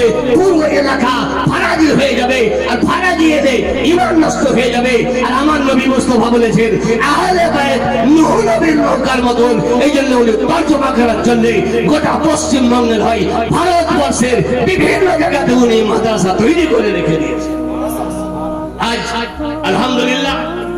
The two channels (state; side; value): identical; both; correlation 1.00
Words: পুরো এলাকা ফারাজি হয়ে যাবে, আর ফারাজি এলে ঈমান নষ্ট হয়ে যাবে। আর আমার নবী মুস্তাফা বলেছেন আহলে বাইত নূহ নবীর নৌকার মতন। এই জন্য উনি তরজমা করার জন্য গোটা পশ্চিমবঙ্গের হয় ভারতবর্ষের বিভিন্ন জায়গাতে উনি মাদ্রাসা তৈরি করে রেখে দিয়েছে। আজ আলহামদুলিল্লাহ